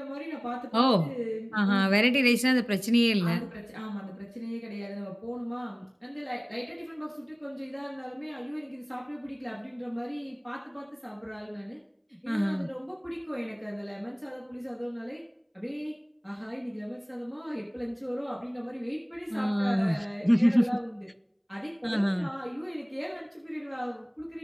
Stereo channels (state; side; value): identical; both; correlation 1.00